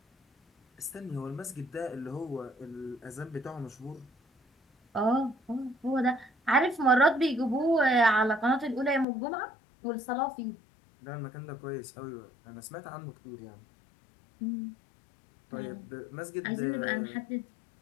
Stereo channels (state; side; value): drops out; right; at 9.1 s